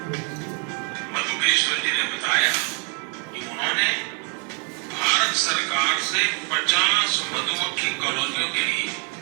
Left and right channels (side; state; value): left; quieter; 37.7 dB